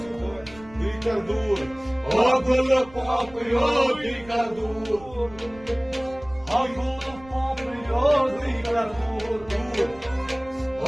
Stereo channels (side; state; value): right; noise; rumble, 21 dB below the sound